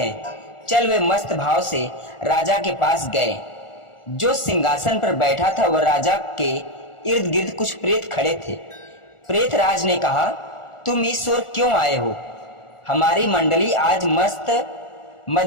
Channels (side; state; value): right; late; 1.4 ms